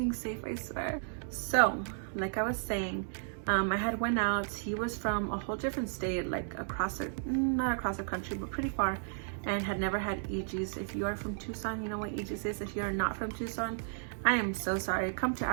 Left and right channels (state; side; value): silent; left; digital silence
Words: safe, I swear. So, like I was saying, I had went out. He was from a whole different state, like not across the country, but pretty far, and had never had EGs. If you are from Tucson, you know what EGs is. If you are not from Tucson, I am so sorry. Come to